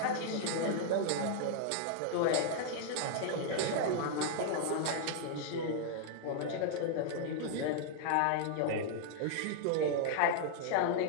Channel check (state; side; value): different; both; correlation -0.01